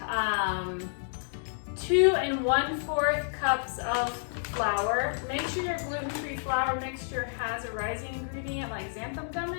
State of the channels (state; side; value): silent; right; digital silence